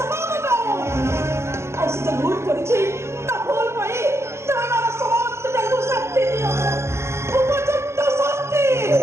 दो और से भूल करिछि ता भूल पई तमरा समस्त जगु शक्ति दियो उपयुक्त शक्ति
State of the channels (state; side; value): late; left; 0.13 ms